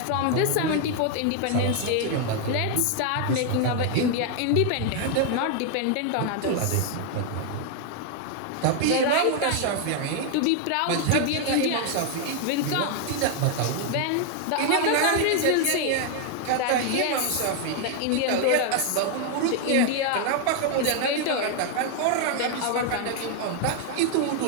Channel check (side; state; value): both; different; correlation 0.00